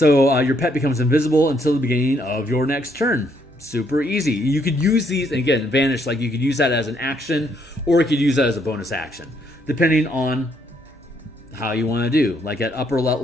your pet becomes invisible until the beginning of your next turn. Super easy. You could use these, again, vanish, like you could use that as an action, or you could use that as a bonus action, depending on how you want to do. Like at upper level,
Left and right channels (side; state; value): both; normal; correlation 0.71